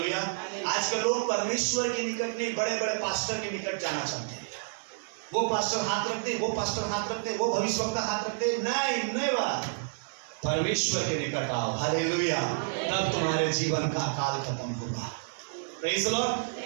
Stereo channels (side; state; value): left; silent; 58 dB below the other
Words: आजकल लोग परमेश्वर के निकट नहीं, बड़े बड़े पास्टर के निकट जाना चाहते हैं। वो पास्टर हाथ रखते, वो पास्टर हाथ रखते, वो भविष्यवक्ता हाथ रखते। नहीं बात, परमेश्वर के निकट आओ। हालेलुया। तब तुम्हारे जीवन का अकाल खत्म होगा। Praise the Lord.